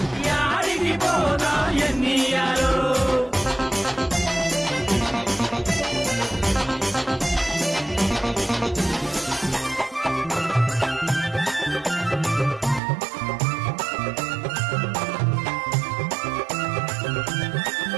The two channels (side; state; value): left; drops out; at 12.8 s